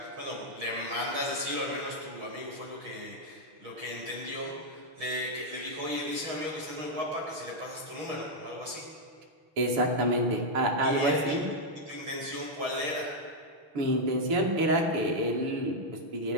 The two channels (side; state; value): left; late; 6.4 ms